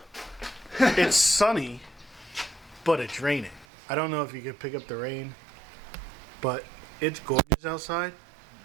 It's sunny, but it's raining. I don't know if you can pick up the rain, but it's gorgeous outside.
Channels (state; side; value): drops out; left; at 3.7 s